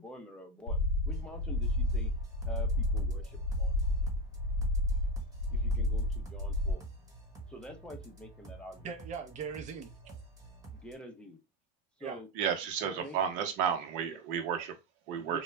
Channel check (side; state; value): both; normal; correlation 0.12